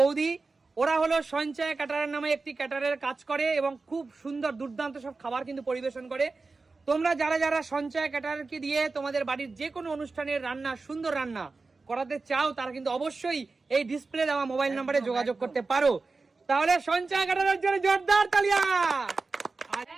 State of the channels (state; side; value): quieter; left; 3.9 dB